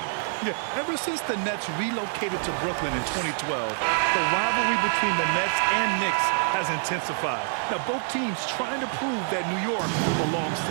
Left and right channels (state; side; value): silent; left; digital silence